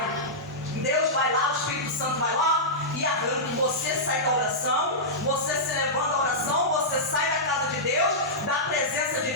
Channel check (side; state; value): both; normal; correlation -0.13